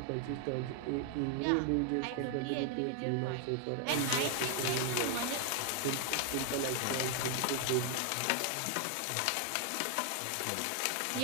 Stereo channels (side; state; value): both; different; correlation 0.00